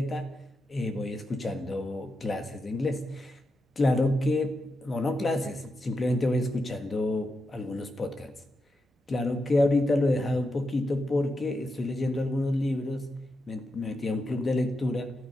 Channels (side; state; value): both; normal; correlation 0.86